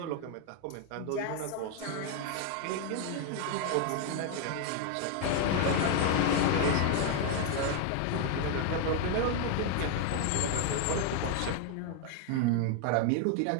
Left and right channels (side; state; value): both; different; correlation 0.00